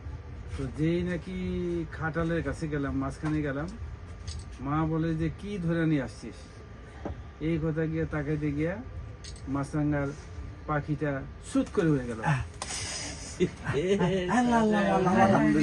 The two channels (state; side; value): identical; both; correlation 1.00